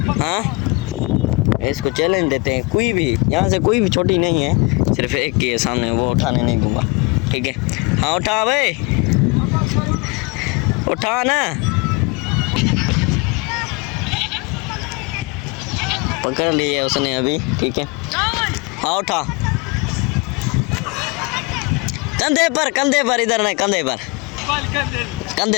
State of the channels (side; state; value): right; quieter; 26.5 dB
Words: हाँ। इसको चैलेंज देते हैं, कोई भी यहाँ से कोई भी छोटी नहीं है, सिर्फ एक की है सामने, वो उठाने नहीं दूंगा, ठीक है। हाँ उठा भाई, उठा ना, पकड़ लिए उसने अभी, ठीक है। हाँ उठा, कंधे पर इधर नहीं, कंधे इधर।